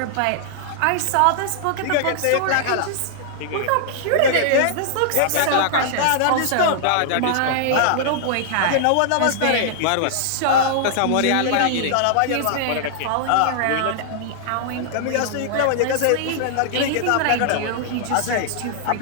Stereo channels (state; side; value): different; both; correlation -0.01